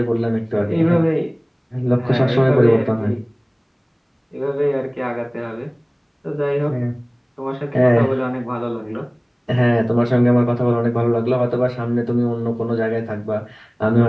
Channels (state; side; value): identical; both; correlation 1.00